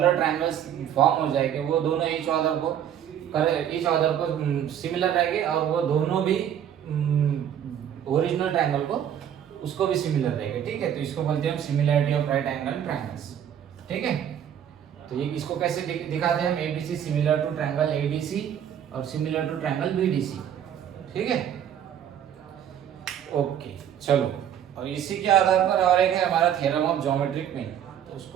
ट्रायंगल्स फॉर्म हो जाएंगे, वो दोनों ईच अदर को सिमिलर रहेंगे, और वो दोनों भी ओरिजिनल ट्रायंगल को उसको भी सिमिलर रहेगा। ठीक है, तो इसको बोलते हैं हम similarity of right angle triangles. ठीक है, तो ये इसको कैसे दिखाते हैं हम, ABC similar to triangle ADC और सिमिलर टू ट्रायंगल बीडीसी। ठीक है, ओके चलो, और इसी के आधार पर और एक है हमारा थ्योरम ऑफ ज्योमेट्रिक मीन, तो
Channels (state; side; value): quieter; left; 9.7 dB